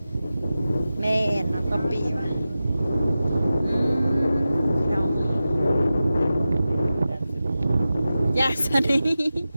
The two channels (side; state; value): both; inverted; correlation -0.93